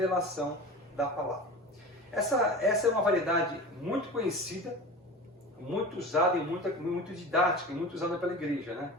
da palavra. Essa é uma variedade muito conhecida, muito usada e muito didática e muito usada pela igreja,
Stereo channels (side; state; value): both; normal; correlation 0.33